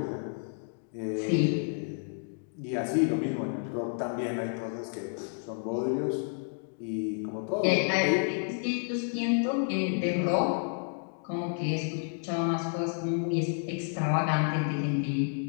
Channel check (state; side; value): silent; right; 58 dB below the other